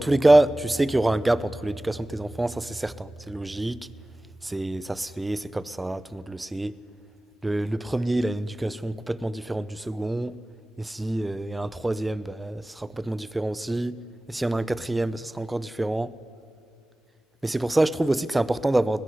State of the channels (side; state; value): both; normal; correlation 0.98